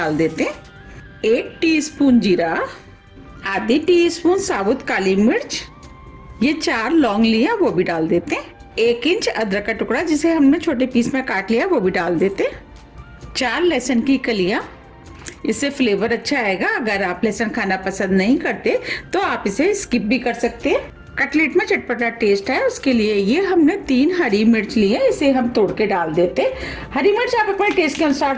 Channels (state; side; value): identical; both; correlation 1.00